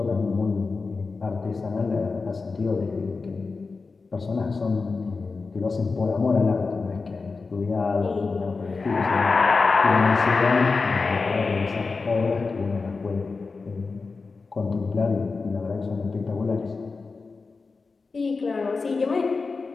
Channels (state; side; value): quieter; right; 4.3 dB